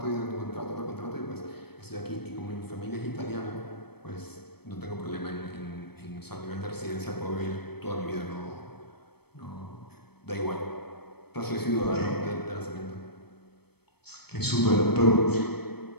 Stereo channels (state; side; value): late; right; 0.97 ms